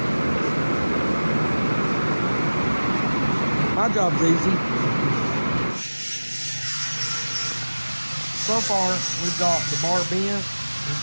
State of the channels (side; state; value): both; inverted; correlation -1.00